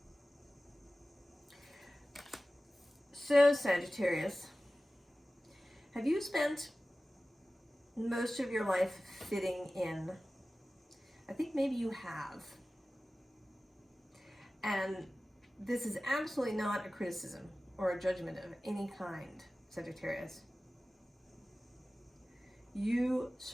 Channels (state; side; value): normal; both; correlation 0.96